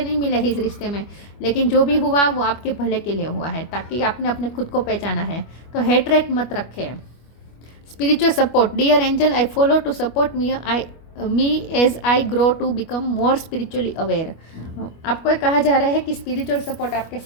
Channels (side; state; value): right; late; 25 ms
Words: नहीं मिले हैं इस रिश्ते में, लेकिन जो भी हुआ वो आपके भले के लिए हुआ है, ताकि आपने अपने खुद को पहचाना है। तो हेटरेट मत रखें। Spiritual support. Dear angel, I follow to support me as I grow to become more spiritually aware. आपको कहा जा रहा है कि स्पिरिचुअल सपोर्ट आपके